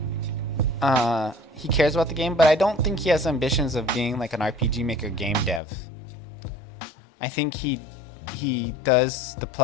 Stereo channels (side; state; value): right; drops out; at 5.6 s